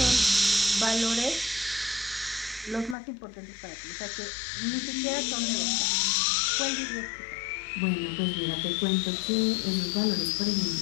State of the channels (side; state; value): right; drops out; at 3.0 s